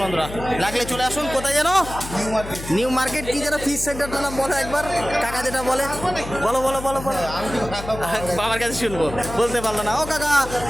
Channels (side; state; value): left; noise; hum, 11 dB below the sound